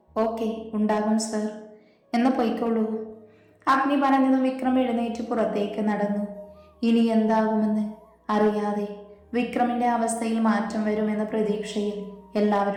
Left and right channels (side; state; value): both; identical; correlation 1.00